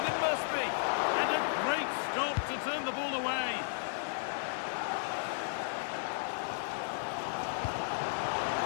it must be. And a great stop to turn the ball away.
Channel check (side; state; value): right; silent; digital silence